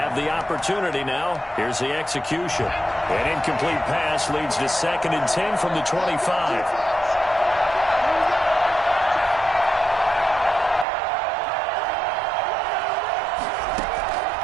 the opportunity now. Here's the execution. An incomplete pass leads to 2nd and 10 from the 25.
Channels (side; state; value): left; drops out; at 10.9 s